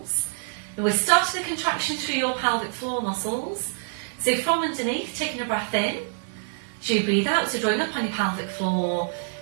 And we're starting the contraction through your pelvic floor muscles. So from underneath, taking a breath in. So you breathe out, so drawing up on your pelvic floor,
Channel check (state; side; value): silent; left; digital silence